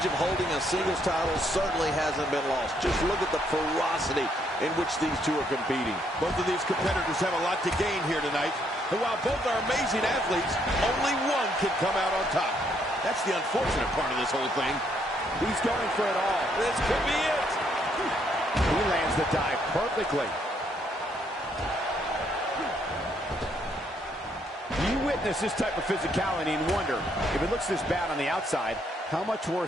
of holding a singles title certainly hasn't been lost. Just look at the ferocity in which these two are competing. Both of these competitors have a lot to gain here tonight. And while both are amazing athletes, only one can come out on top. That's the unfortunate part of this whole thing. He's going for it all. This could be it. He lands the dive perfectly. You witness this type of physicality and wonder, if it looks this bad on the outside, how much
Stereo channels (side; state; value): both; normal; correlation 0.71